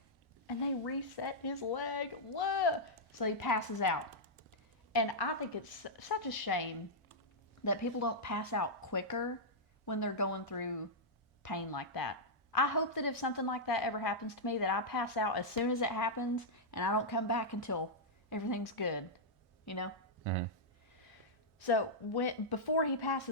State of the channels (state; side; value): normal; both; correlation -0.08